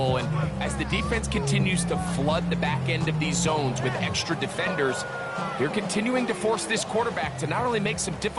And as the defense continues to flood the back end of these zones with extra defenders, they're continuing to force this quarterback to not only make some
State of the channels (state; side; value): identical; both; correlation 1.00